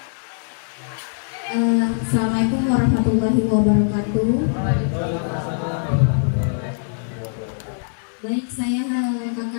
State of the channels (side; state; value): right; silent; digital silence